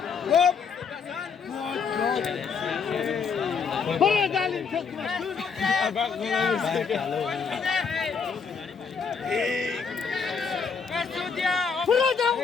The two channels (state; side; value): quieter; right; 5.8 dB